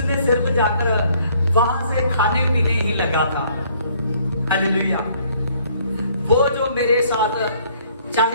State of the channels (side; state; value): both; inverted; correlation -0.62